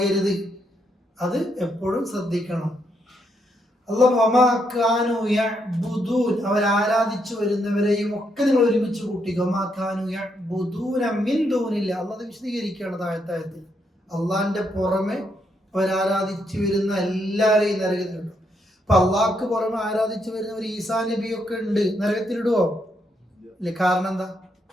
അത് എപ്പോഴും ശ്രദ്ധിക്കണം. അവർ ആരാധിച്ചു വരുന്നവരെയും ഒക്കെ നിങ്ങൾ ഒരുമിച്ച് കൂട്ടിക്കോ. അല്ലാഹ് വിശദീകരിക്കുകയാണ് താഴത്താഴത്തിൽ. അള്ളാന്റെ പുറമെ അവരാരാധിച്ചു വരുന്ന എല്ലാവരെയും നരകത്തിലിടും. അപ്പൊ അള്ളാഹ്ക്ക് പുറമെ ആരാധിച്ചു വരുന്നവർ ഈസാ നബിയൊക്കെ ഉണ്ട്, നരകത്തിലിടുവോ? അല്ലെ? കാരണം എന്താ?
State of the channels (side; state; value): both; normal; correlation 0.77